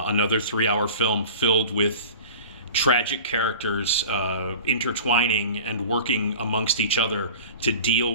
3-hour film filled with tragic characters intertwining and working amongst each other to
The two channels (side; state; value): both; inverted; correlation -0.38